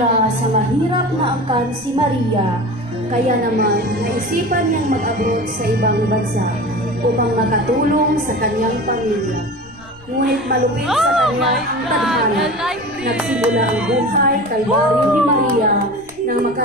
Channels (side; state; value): left; noise; rumble, 25 dB below the sound